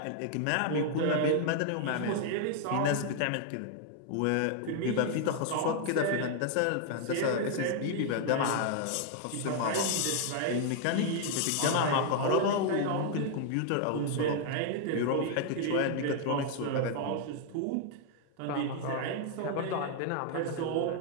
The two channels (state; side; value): different; both; correlation 0.00